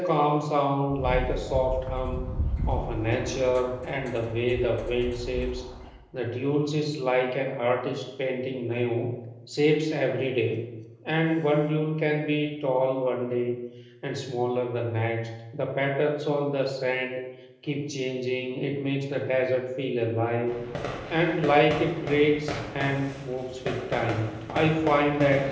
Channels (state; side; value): identical; both; correlation 1.00